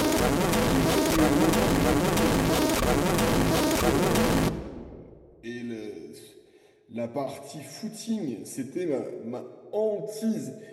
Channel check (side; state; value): both; identical; correlation 1.00